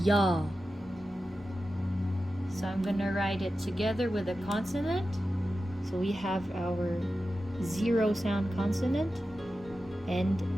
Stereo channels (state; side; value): normal; both; correlation 0.92